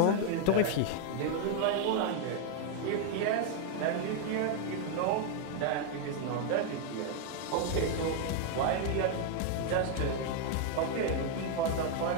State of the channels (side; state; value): both; different; correlation 0.01